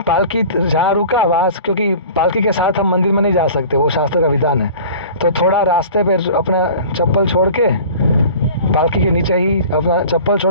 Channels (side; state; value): both; inverted; correlation -0.43